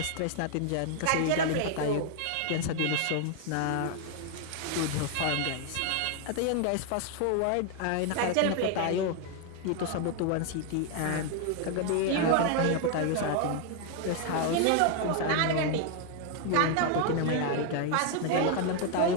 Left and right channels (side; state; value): both; different; correlation 0.00